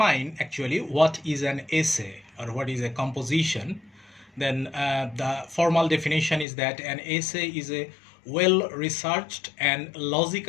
actually what is an essay or what is a composition, then the formal definition is that an essay is a well-researched and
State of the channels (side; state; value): right; drops out; at 6.5 s